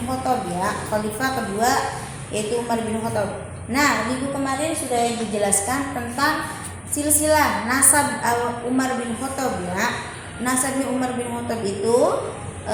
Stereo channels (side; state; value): both; identical; correlation 1.00